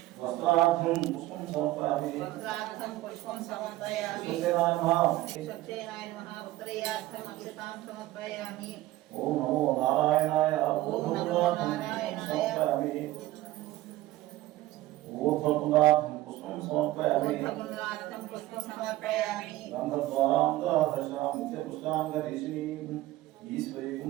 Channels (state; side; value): quieter; left; 16.8 dB